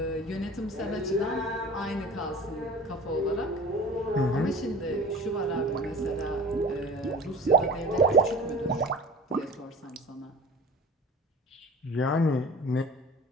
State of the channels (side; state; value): both; normal; correlation 0.38